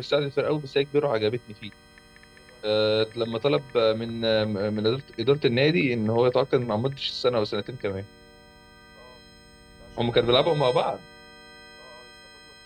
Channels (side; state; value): both; identical; correlation 1.00